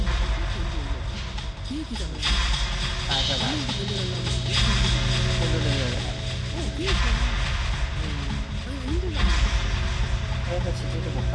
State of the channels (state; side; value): identical; both; correlation 1.00